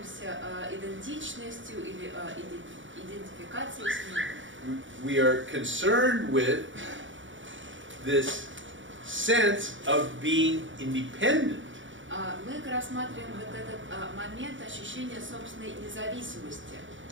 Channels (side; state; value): left; late; 0.56 ms